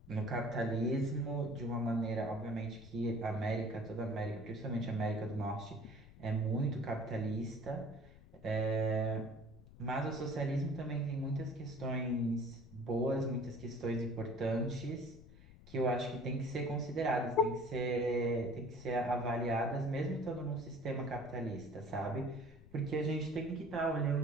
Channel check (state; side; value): noise; left; rumble, 20 dB below the sound